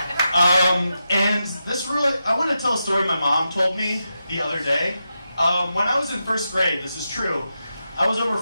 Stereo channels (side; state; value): both; inverted; correlation -0.88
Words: And this really, I want to tell a story my mom told me the other day. When I was in first grade, this is true, I was over